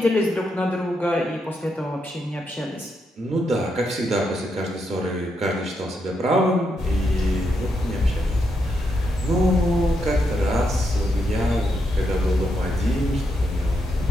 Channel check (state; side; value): normal; both; correlation 0.81